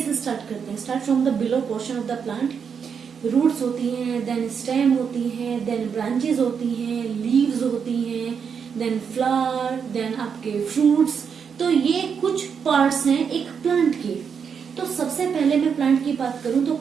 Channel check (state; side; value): quieter; left; 6.7 dB